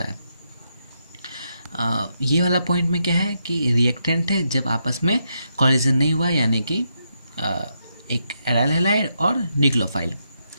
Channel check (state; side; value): inverted; both; correlation -0.82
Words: है। ये वाला पॉइंट में क्या है कि रिएक्टेंट है जब आपस में कॉलिजन नहीं हुआ, यानी कि एक एराइल हैलाइड और न्यूक्लियोफाइल